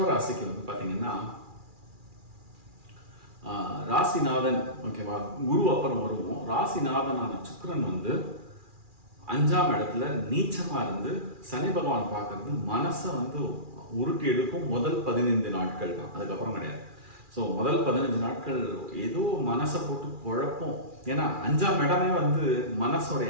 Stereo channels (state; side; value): late; left; 2.4 ms